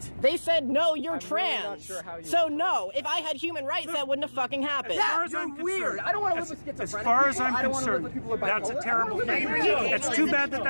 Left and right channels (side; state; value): both; inverted; correlation -1.00